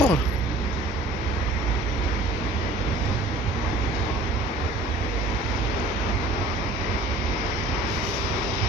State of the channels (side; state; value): both; normal; correlation 0.48